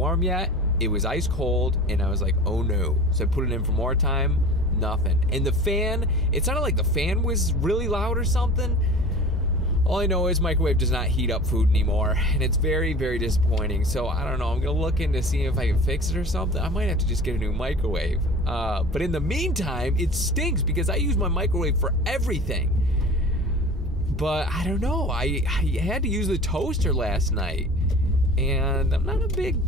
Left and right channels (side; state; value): both; normal; correlation 0.40